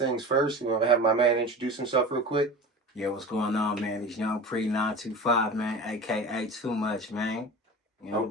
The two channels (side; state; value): both; normal; correlation 0.33